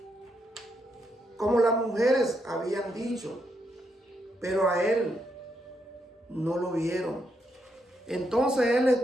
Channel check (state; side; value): normal; both; correlation 0.79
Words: las mujeres habían dicho, pero a Él no lo vieron. Entonces Él